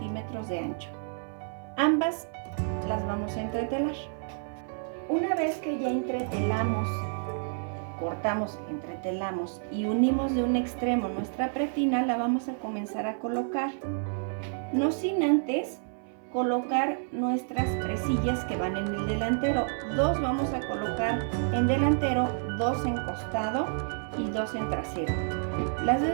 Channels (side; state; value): left; silent; 58 dB below the other